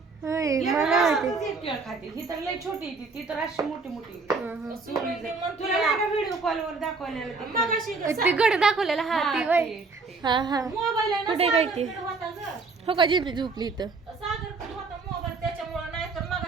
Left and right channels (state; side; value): quieter; left; 4.1 dB